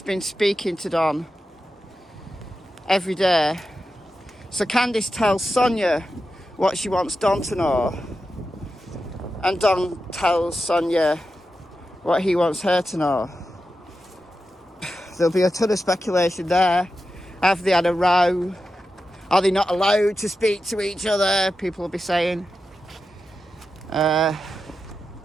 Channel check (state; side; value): normal; both; correlation 0.90